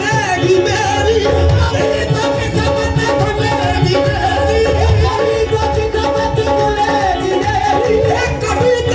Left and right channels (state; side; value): identical; both; correlation 1.00